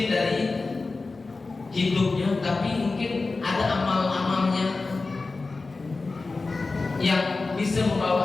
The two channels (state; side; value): quieter; right; 3.7 dB